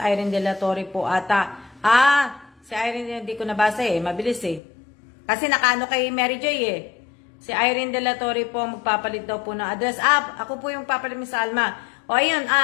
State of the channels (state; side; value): drops out; right; at 4.6 s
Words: De La Torre po ata. Si Irene hindi ko nabasa mabilis Kasi nakaano kay Mary Joy Si Irene De La Torre po magpapalit daw po ng address. Ako po yung papalit Miss Alma. O ayun,